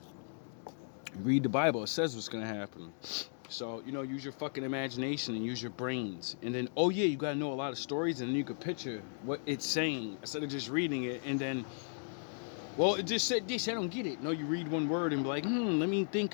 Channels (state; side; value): silent; right; digital silence